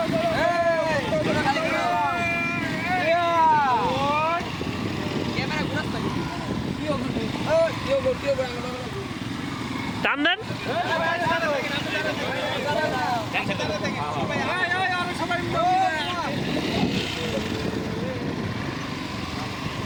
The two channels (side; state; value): both; identical; correlation 1.00